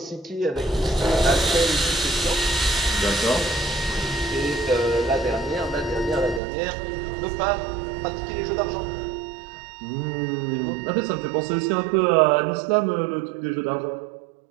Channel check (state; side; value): drops out; left; at 6.4 s